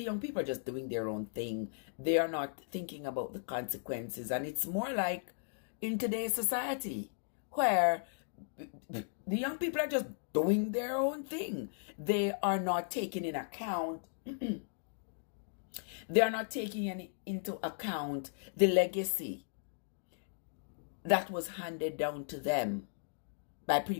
young people are just doing their own thing. They are not thinking about the consequences. And it's more like in today's society where the young people are just doing their own thing. They are not taking in account they are not taking into account the legacy that was handed down to them by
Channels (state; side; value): silent; right; digital silence